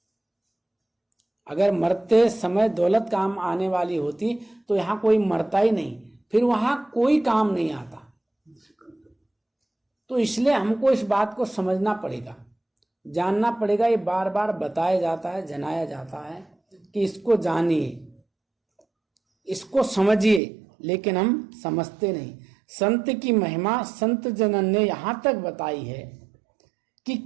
अगर मरते समय दौलत काम आने वाली होती तो यहां कोई मरता ही नहीं, फिर वहां कोई काम नहीं आता। तो इसलिए हमको इस बात को समझना पड़ेगा, जानना पड़ेगा। ये बार बार बताया जाता है, जनाया जाता है कि इसको जानिए, इसको समझिए, लेकिन हम समझते नहीं। संत की महिमा संत जनन ने यहां तक बताई है कि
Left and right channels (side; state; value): left; drops out; at 20.4 s